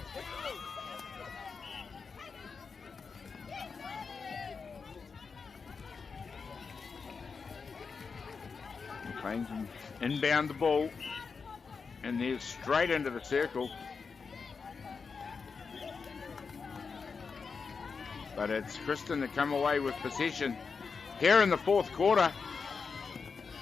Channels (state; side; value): quieter; right; 5.2 dB